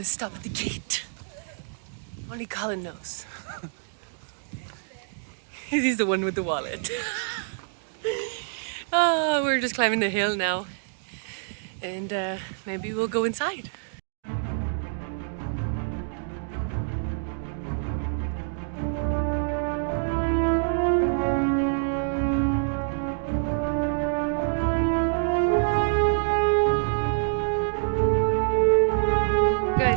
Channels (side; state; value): left; silent; digital silence